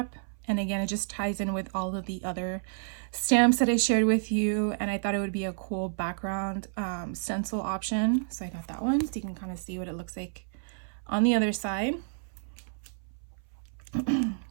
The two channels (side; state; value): left; silent; 58 dB below the other